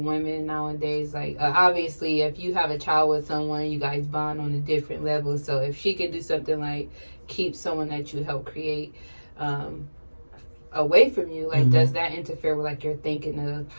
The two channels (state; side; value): inverted; both; correlation -1.00